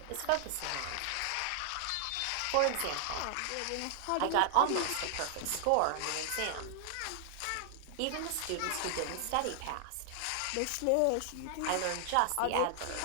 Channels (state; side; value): different; both; correlation -0.01